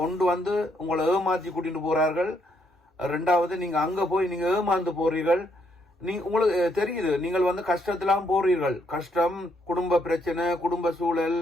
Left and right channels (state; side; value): normal; both; correlation 0.74